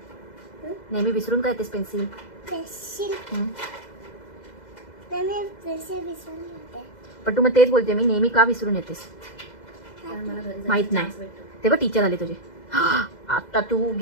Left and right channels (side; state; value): right; late; 2.0 ms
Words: नेहमी विसरून का येतेस पेन्सिल? पण तू मग तेच बोलते, मी नेहमी का विसरून येतेस? माहित नाही. तेव्हा टीचर आले तुझे. आता तू